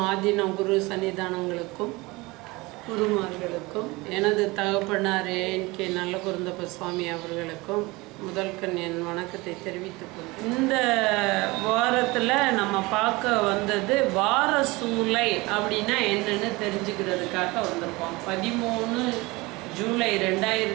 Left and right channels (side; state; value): left; quieter; 23.0 dB